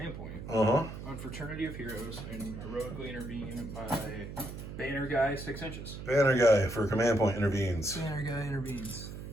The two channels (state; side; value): noise; right; hum, 9 dB below the sound